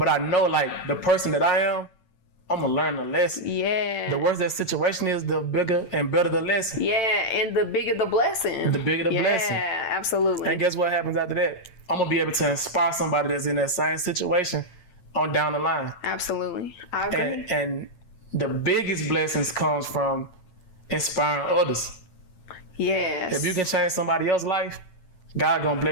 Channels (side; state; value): right; late; 8.9 ms